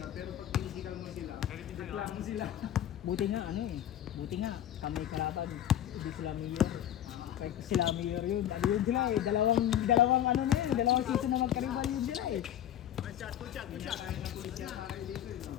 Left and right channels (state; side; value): quieter; right; 11.1 dB